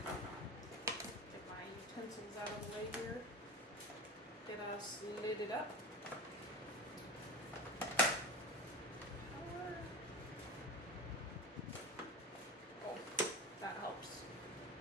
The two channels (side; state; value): both; normal; correlation 0.28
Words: Get my utensils out of the way here. Get us lidded up. Oh, that helps.